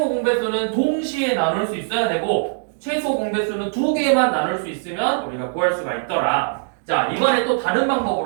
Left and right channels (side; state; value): left; silent; digital silence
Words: 공배수는 동시에 나눌 수 있어야 되고 최소 공배수는 2개만 나눌 수 있으면 우리가 구할 수가 있더라. 자, 이번에 또 다른